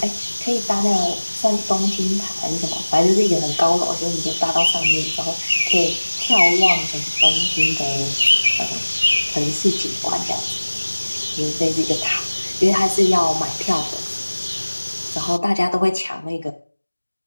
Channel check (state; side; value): inverted; both; correlation -1.00